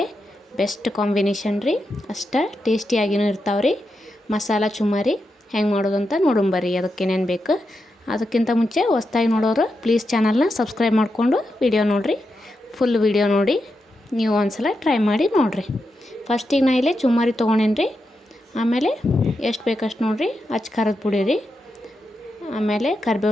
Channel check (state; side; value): normal; both; correlation 0.87